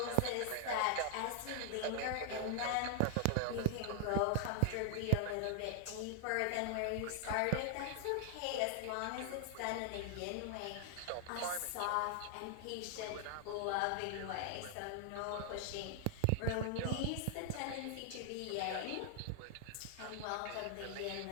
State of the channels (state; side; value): different; both; correlation 0.00